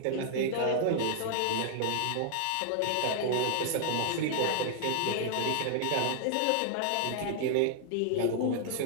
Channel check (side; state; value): both; different; correlation -0.01